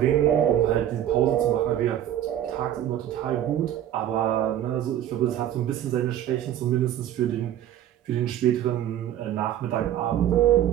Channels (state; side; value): quieter; left; 11.4 dB